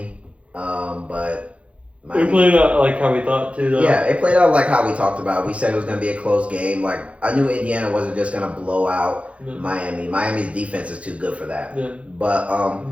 but It played out like how we thought too, though. Yeah, it played out like how we talked about. We said it was going to be a close game. Like, I knew Indiana wasn't just going to blow out Miami. Miami's defense is too good for that. Yeah. But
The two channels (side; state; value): left; late; 0.063 ms